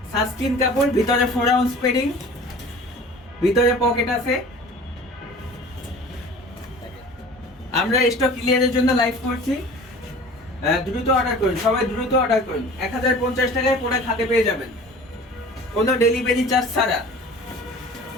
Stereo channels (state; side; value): normal; both; correlation 0.43